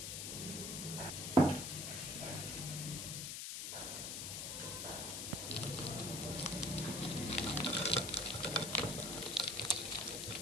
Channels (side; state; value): left; noise; hiss, 4 dB below the sound